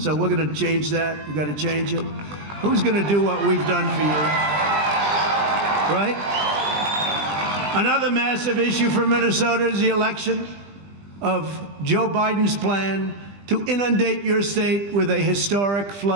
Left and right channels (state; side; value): late; left; 20 ms